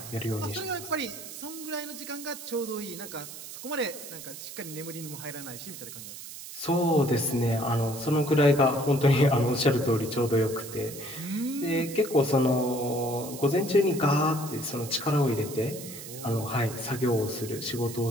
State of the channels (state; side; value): noise; right; hiss, 12 dB below the sound